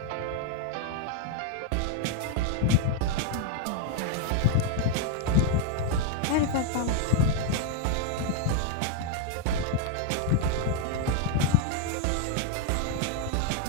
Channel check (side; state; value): both; different; correlation 0.00